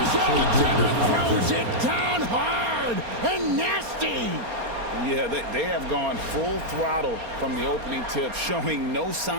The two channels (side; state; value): left; late; 4.3 ms